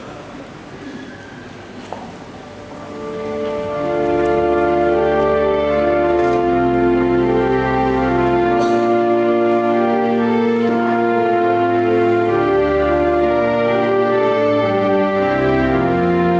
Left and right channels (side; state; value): both; identical; correlation 1.00